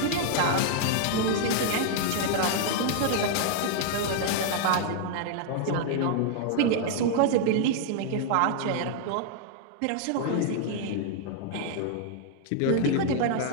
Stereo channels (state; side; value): different; both; correlation 0.00